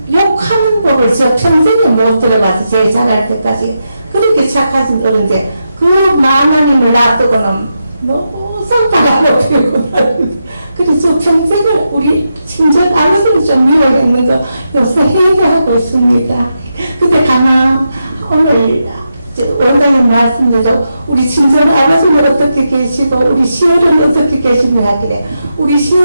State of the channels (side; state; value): both; inverted; correlation -0.86